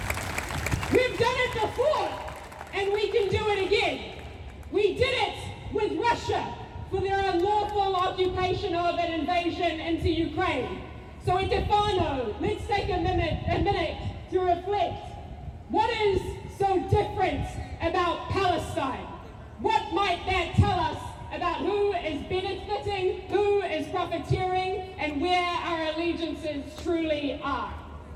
We've done it before, and we can do it again. We did it with Russia for their unlawful occupation of an invasion into Ukraine. So in Stefano, let's take a minute to reflect. What is so different about Palestine? What might that tell us about who is benefiting, who is profiteering, and where our allegiances truly are?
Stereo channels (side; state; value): both; identical; correlation 1.00